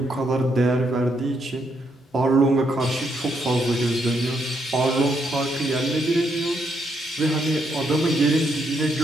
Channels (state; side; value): normal; both; correlation 0.76